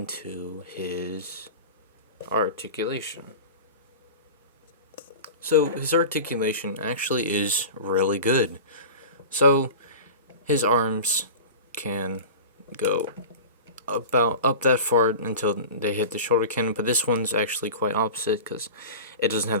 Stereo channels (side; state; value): both; inverted; correlation -0.33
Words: his articulation. So his articulation actually is really good. So his arms can go about up that far until they hit the shoulder cannon, but this one's actually quite opposite because it doesn't